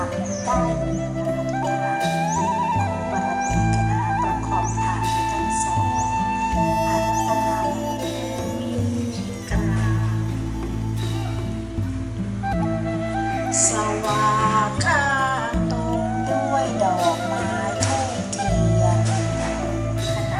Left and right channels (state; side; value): identical; both; correlation 1.00